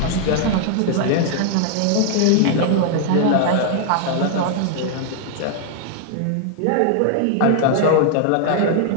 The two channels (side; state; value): both; different; correlation 0.00